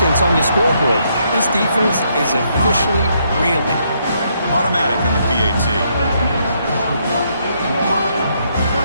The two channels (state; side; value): inverted; both; correlation -0.74